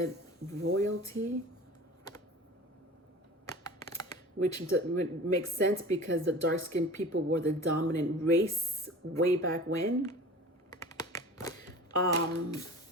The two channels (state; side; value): normal; both; correlation 0.39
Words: royalty, which makes sense because the dark-skinned people were the dominant race way back when.